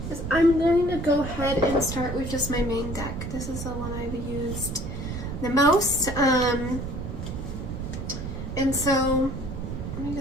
is I'm going to go ahead and start with just my main deck. This is the one I've used the most. And so let me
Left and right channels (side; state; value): right; noise; rumble, 6 dB below the sound